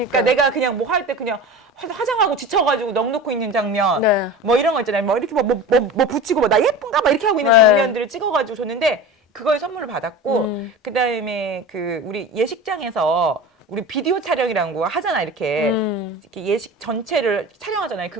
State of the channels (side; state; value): both; normal; correlation 0.32